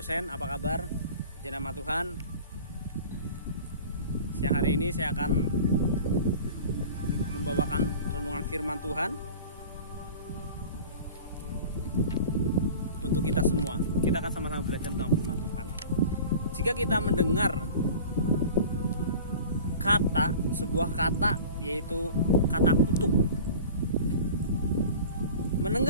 apa kabar? Puji nama Tuhan. Siang hari ini saya akan membawakan renungan firman Tuhan untuk kita semua. Kita akan sama-sama belajar tentang firman Tuhan. Jika kita mendengar sebuah kata, yaitu kata kutuk.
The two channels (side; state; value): both; inverted; correlation -0.40